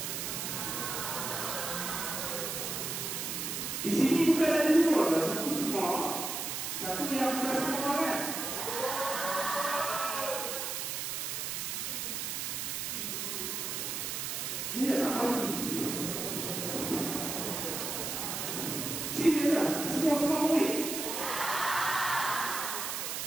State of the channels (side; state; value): right; noise; hiss, 3 dB below the sound